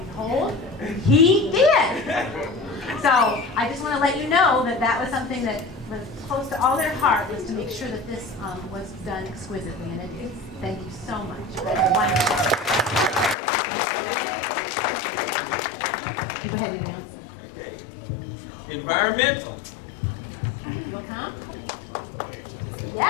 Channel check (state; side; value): drops out; right; at 13.4 s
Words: behold, he did. So I just want to let you know that that was something that was close to all their heart, was to make sure that this was done exquisitely. And it is. Thank you so much. That was wonderful. Go ahead, Neil. Environmental. You'll come?